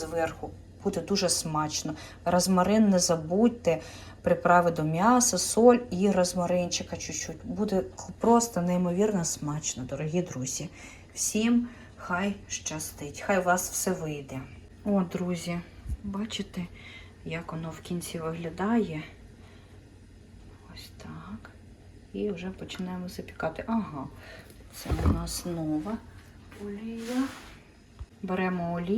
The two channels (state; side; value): identical; both; correlation 1.00